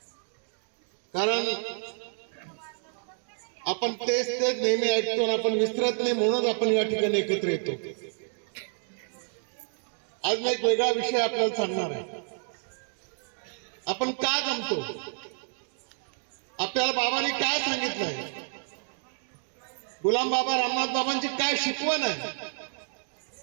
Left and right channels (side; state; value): left; silent; 58 dB below the other